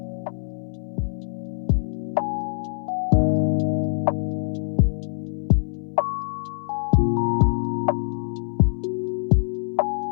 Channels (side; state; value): right; silent; 60 dB below the other